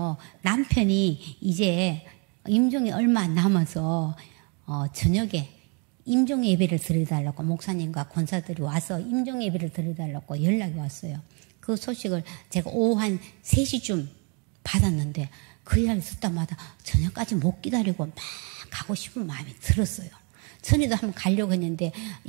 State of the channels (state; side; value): quieter; left; 34.4 dB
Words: 남편이 이제 임종이 얼마 안 남아서 저녁에 임종 예배를 드려달라고 목사님과 권사들이 와서 임종 예배를 드려달라고 연락이 왔어요. 그 소식을 제가 오후 한 3시쯤 받았는데 그 이야기 듣다마다 저녁까지 못 기다리고 막 가고 싶은 마음이 들었어요. 전에도 한번 가려고 했는데